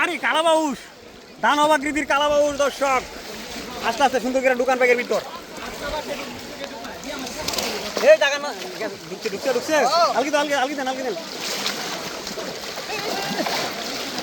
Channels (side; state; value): both; identical; correlation 1.00